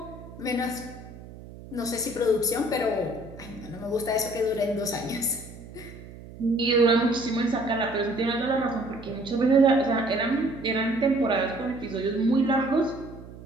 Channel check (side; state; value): right; noise; hum, 16 dB below the sound